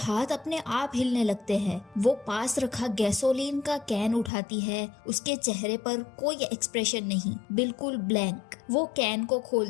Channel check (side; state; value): right; drops out; at 4.3 s